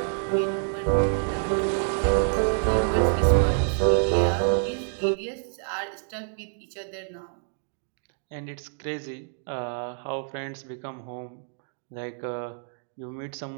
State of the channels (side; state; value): left; silent; digital silence